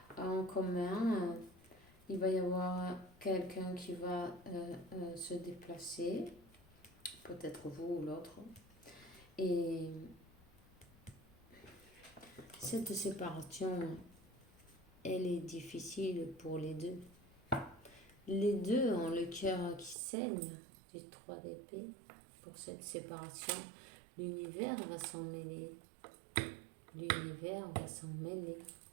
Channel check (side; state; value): left; drops out; at 20.0 s